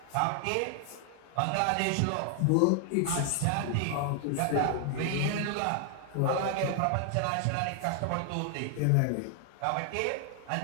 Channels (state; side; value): different; both; correlation 0.00